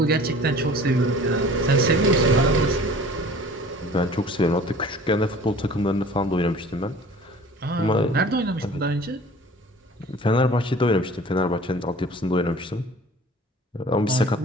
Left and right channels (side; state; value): both; normal; correlation 0.45